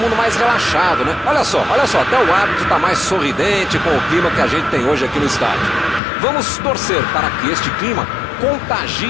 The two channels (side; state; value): right; drops out; at 6.0 s